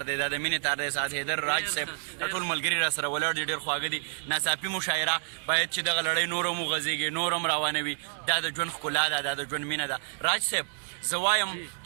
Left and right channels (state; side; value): silent; left; digital silence